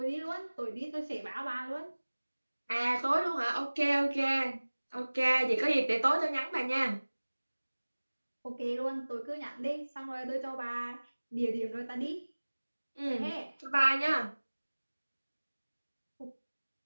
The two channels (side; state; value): both; inverted; correlation -1.00